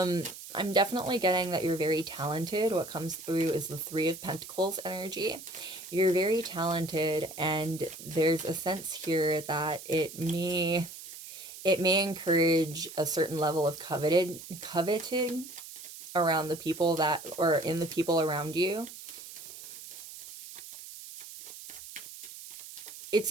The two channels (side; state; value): right; noise; hiss, 13 dB below the sound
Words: definitely getting that you're very talented. What comes through is the Three of Pentacles energy. You're very talented, and there's a sense here that it may encourage a certain level of coveting around the people that, or in the people around you.